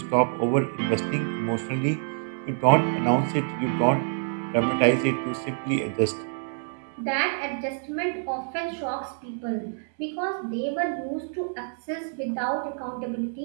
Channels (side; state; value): left; silent; digital silence